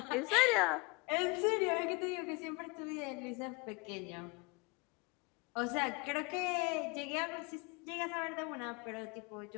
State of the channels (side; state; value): right; quieter; 28.2 dB